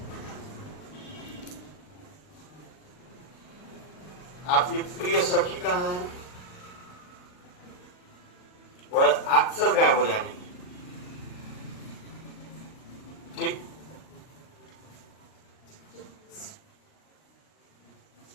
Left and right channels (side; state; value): right; late; 39 ms